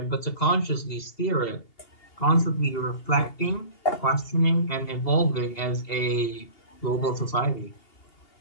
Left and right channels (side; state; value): right; late; 2.8 ms